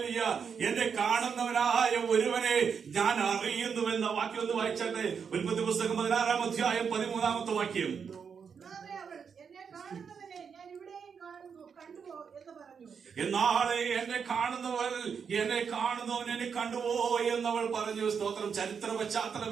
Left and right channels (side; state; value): left; quieter; 6.5 dB